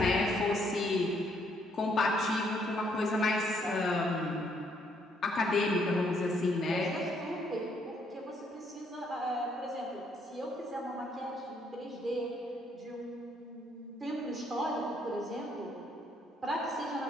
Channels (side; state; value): both; normal; correlation 0.70